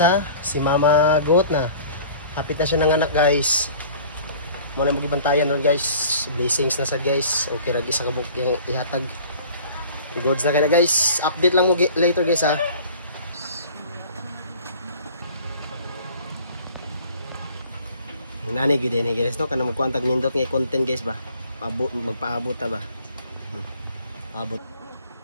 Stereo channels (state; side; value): inverted; both; correlation -0.47